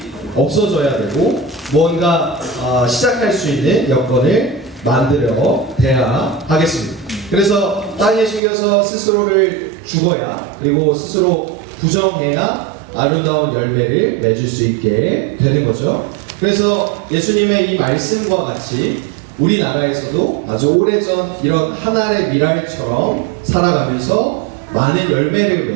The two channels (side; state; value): left; drops out; at 8.4 s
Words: 없어져야 되고 뭔가 시작할 수 있는 여건을 만들어야 하겠습니다. 그래서 땅에 심겨서 스스로를 죽어야, 그리고 스스로 부정해야 아름다운 열매를 맺을 수 있게 되는 거죠. 그래서 예수님의 이 말씀과 같이 우리나라에서도 아주 오래전 이런 한 알의 밀알처럼 살아가면서 많은 열매를